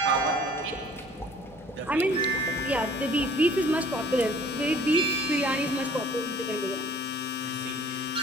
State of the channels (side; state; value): both; normal; correlation 0.53